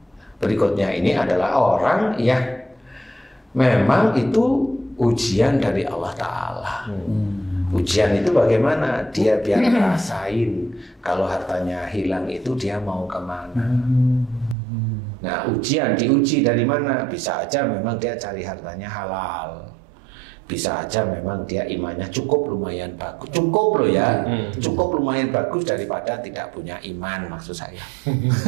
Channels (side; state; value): left; drops out; at 14.6 s